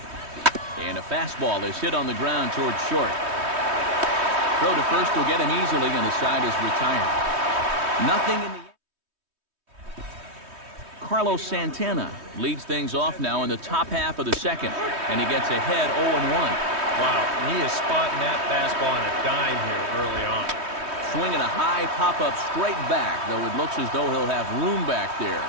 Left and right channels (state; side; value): late; left; 3.2 ms